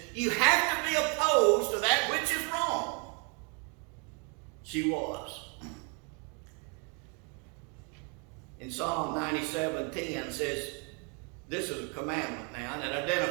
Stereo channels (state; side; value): quieter; left; 35.8 dB